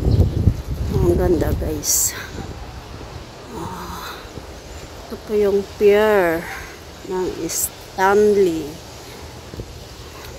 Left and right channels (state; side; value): identical; both; correlation 1.00